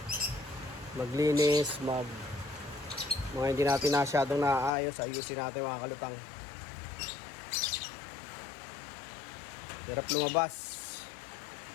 maglinis, mga hindi natin masyadong naayos, ayusin natin mga kalutang. Hirap lumabas,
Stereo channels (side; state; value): right; drops out; at 4.7 s